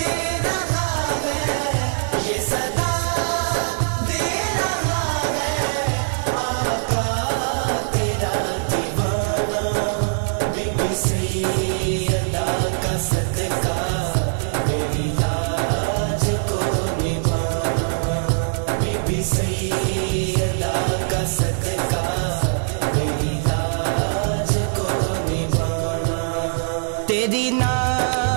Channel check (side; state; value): left; silent; 64 dB below the other